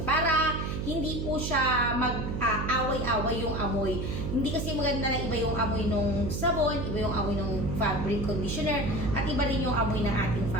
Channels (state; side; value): noise; right; hum, 3 dB below the sound